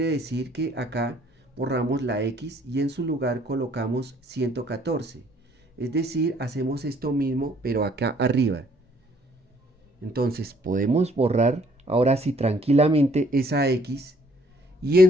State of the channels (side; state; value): both; normal; correlation 0.62